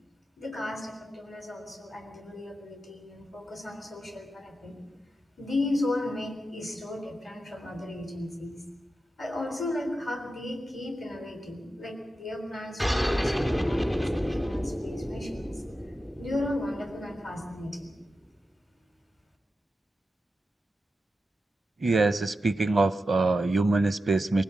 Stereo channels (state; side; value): normal; both; correlation 0.90